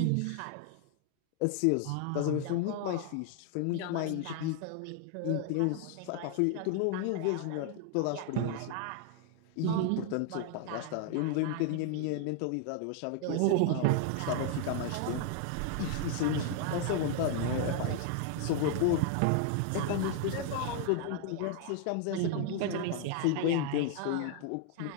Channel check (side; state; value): both; different; correlation 0.00